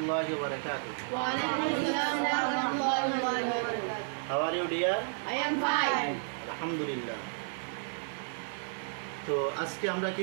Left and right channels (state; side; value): silent; left; digital silence